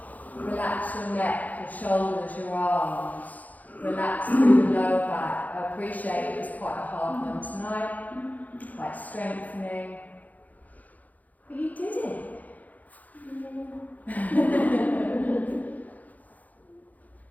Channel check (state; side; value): late; right; 0.079 ms